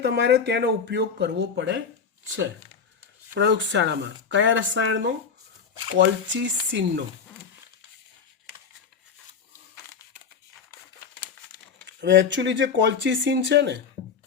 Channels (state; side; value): quieter; right; 6.1 dB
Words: તમારે તેનો ઉપયોગ કરવો પડે છે. પ્રયોગશાળામાં કયા રસાયણનો? કોલ્ચિસિનનો. હવે એકચ્યુઅલી જે કોલ્ચિસિન છે ને,